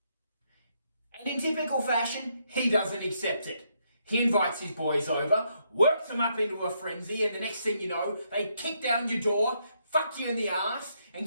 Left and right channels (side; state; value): both; inverted; correlation -0.75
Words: And in typical fashion, he doesn't accept it. He invites his boys over, works them up into a frenzy, and the next thing you know, they kick down your door, fuck you in the ass, and